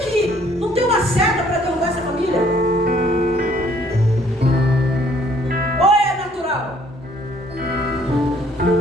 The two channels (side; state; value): both; normal; correlation 0.61